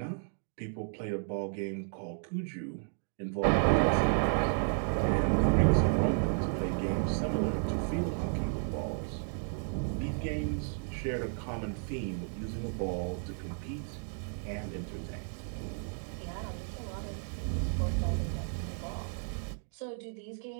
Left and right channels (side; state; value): left; silent; 56 dB below the other